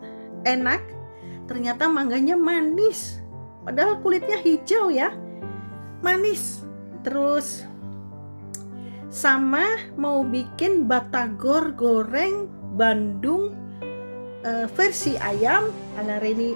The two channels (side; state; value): both; inverted; correlation -1.00